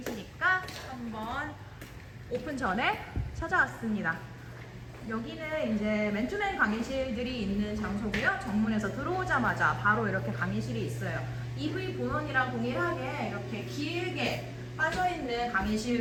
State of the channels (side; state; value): both; identical; correlation 1.00